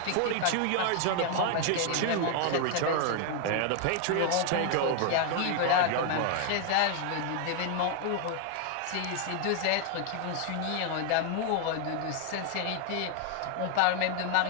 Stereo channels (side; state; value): both; different; correlation 0.00